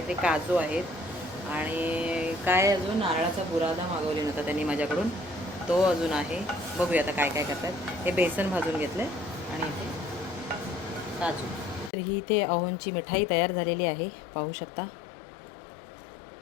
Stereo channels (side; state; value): right; drops out; at 11.9 s